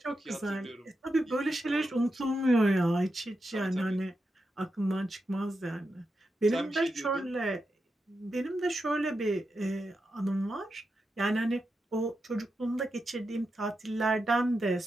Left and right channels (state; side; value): normal; both; correlation 0.87